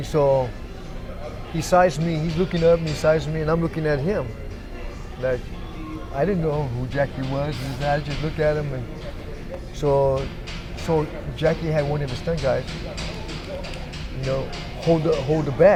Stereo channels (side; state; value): both; identical; correlation 1.00